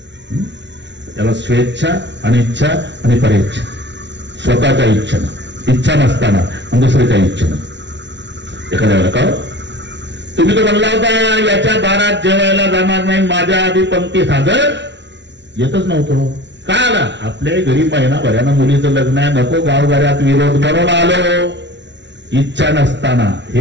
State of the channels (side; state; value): left; late; 0.51 ms